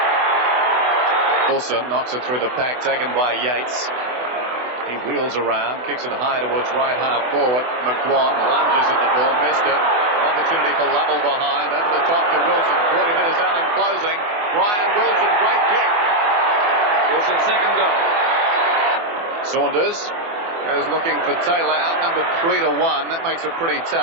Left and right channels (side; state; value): left; late; 24 ms